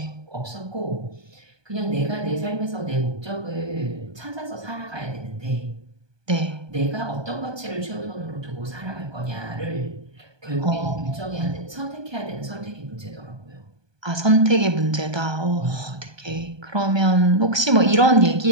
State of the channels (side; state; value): left; late; 1.2 ms